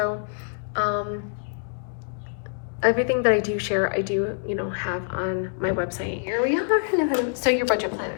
everything that I do share, I do, you know, have on my website. Here we are. Hello. So your budget planner.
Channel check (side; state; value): right; silent; digital silence